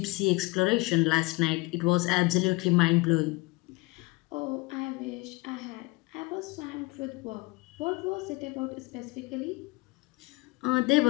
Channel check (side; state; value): right; quieter; 23.7 dB